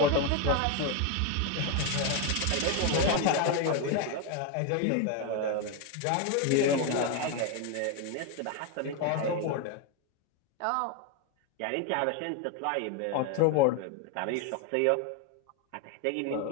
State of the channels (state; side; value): different; both; correlation 0.02